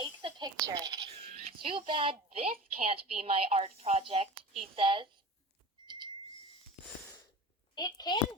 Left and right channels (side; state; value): both; normal; correlation 0.34